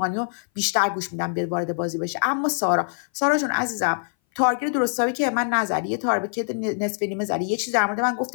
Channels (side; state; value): right; silent; 59 dB below the other